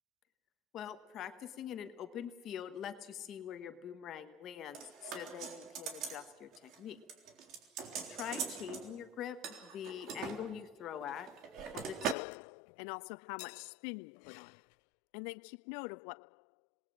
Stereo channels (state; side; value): drops out; right; at 12.2 s